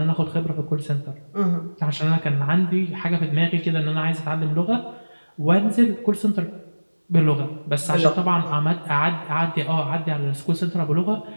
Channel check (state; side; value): inverted; both; correlation -1.00